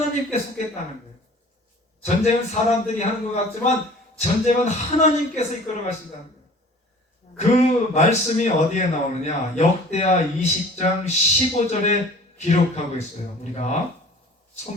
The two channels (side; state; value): both; normal; correlation 0.47